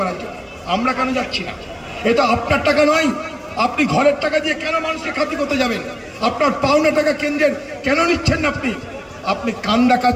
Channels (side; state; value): both; identical; correlation 1.00